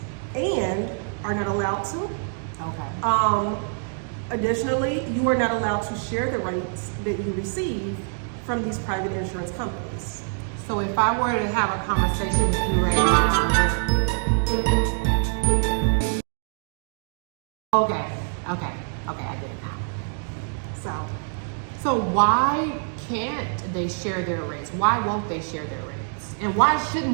and are not allowed to. Okay. Additionally, you are not allowed to share the rates that you receive from these private insurance companies. So if I were to have a conversation with you right now, okay, I get it now. So why can't they share their rates? Why won't they share their rates? And why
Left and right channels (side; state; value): left; silent; 62 dB below the other